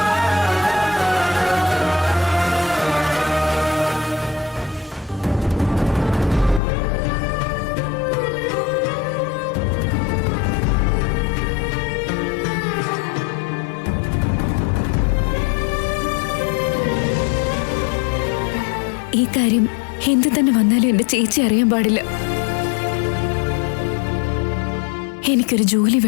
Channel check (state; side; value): drops out; right; at 6.6 s